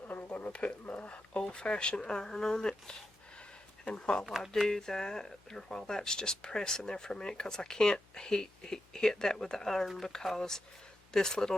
I'm going to put my old-fashioned iron on it. And while I do that, or while that's just pressing there for a minute, because I can't hit that with the iron because this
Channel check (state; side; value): normal; both; correlation 0.88